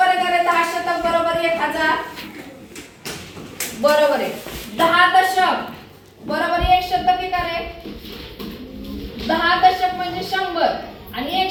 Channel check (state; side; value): identical; both; correlation 1.00